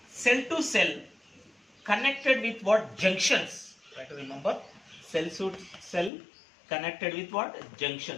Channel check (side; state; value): right; drops out; at 6.1 s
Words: cell to cell connected with what? Junctions. Try to remember. Cell to cell connected with what?